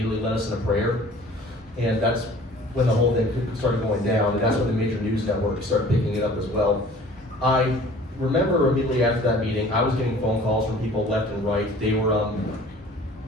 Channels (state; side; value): normal; both; correlation 0.49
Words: led us in a prayer, and that's when the whole thing started going down, and that's when the major news networks started picking it up as well. I remember immediately after that meeting, I was getting phone calls from people left and right. They